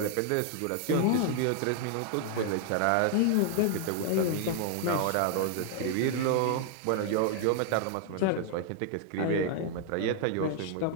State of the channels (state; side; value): different; both; correlation 0.00